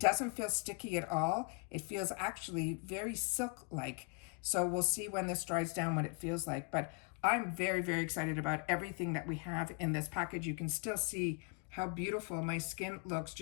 feel sticky at all. It feels actually very silk-like. So we'll see when this dries down what it feels like. But I'm very, very excited about everything that we have in this package. You can still see how beautiful my skin looks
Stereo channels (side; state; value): right; quieter; 36.1 dB